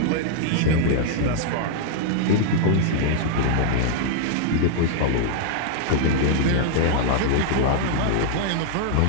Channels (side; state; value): both; different; correlation -0.01